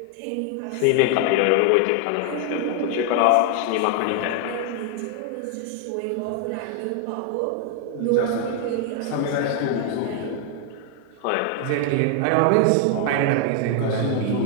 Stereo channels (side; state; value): both; different; correlation 0.00